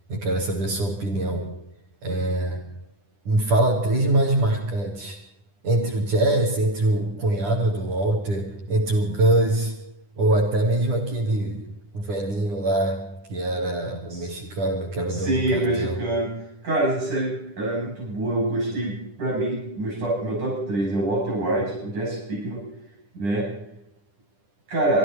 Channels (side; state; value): left; late; 10 ms